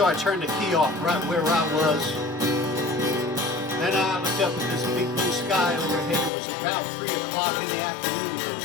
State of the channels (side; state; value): right; drops out; at 6.3 s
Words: I turned the key off right where I was. Then I looked up at this big blue sky overhead. It was about 3 o'clock in the afternoon. Those